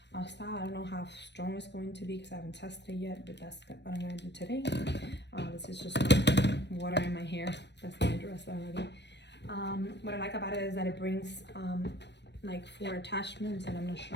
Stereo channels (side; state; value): right; late; 0.50 ms